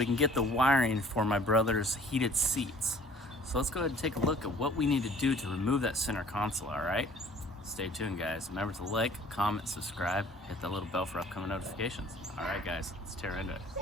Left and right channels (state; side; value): normal; both; correlation 0.52